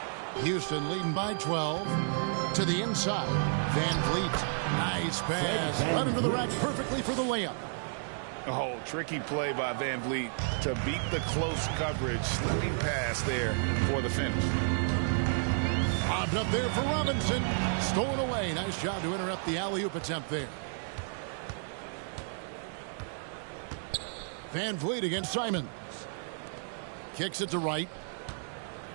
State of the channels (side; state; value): left; silent; 57 dB below the other